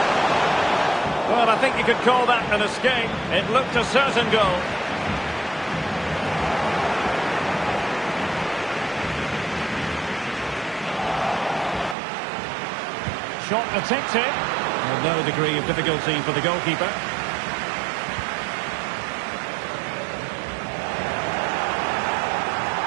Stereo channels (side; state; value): left; drops out; at 12.0 s